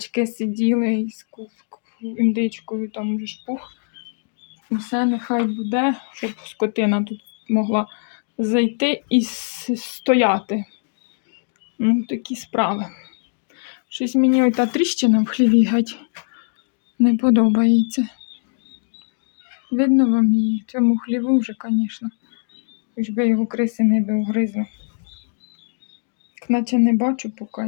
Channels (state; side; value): silent; right; 64 dB below the other